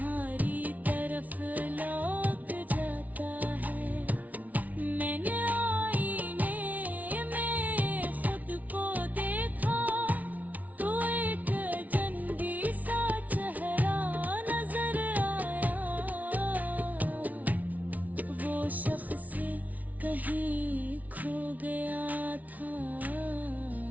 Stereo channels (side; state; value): left; late; 0.073 ms